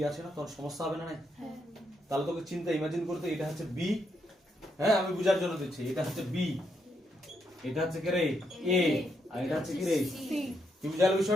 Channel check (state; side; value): normal; both; correlation 0.78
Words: আছে না, তখন সমস্যা হবে না। তাহলে তোকে চিন্তা ইমাজিন করতে, এটা হচ্ছে b, হ্যাঁ আমি বুঝার জন্য দিচ্ছি, এটা হচ্ছে b, এটা হচ্ছে কি রে a, আর এটা হচ্ছে কি রে c। কি বুঝালো